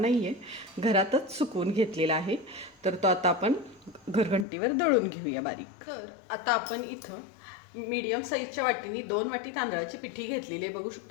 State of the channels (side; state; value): right; drops out; at 4.5 s